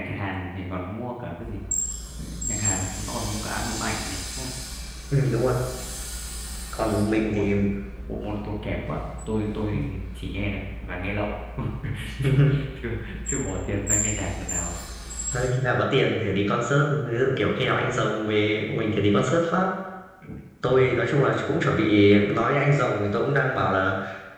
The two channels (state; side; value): identical; both; correlation 1.00